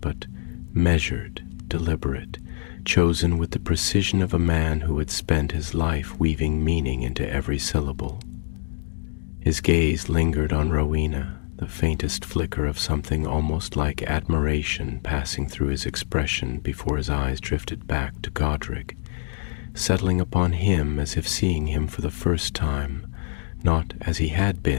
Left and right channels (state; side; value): silent; right; 62 dB below the other